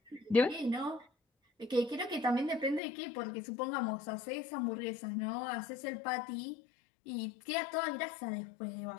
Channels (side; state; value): right; drops out; at 2.8 s